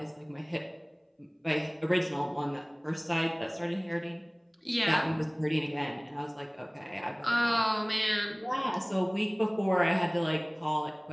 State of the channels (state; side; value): identical; both; correlation 1.00